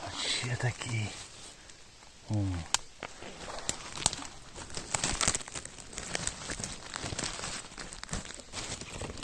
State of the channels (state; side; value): identical; both; correlation 1.00